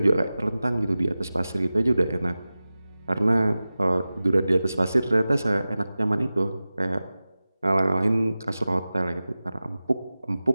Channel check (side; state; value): both; inverted; correlation -0.96